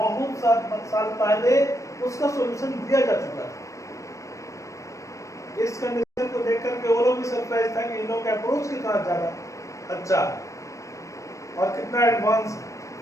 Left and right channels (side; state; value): right; late; 0.15 ms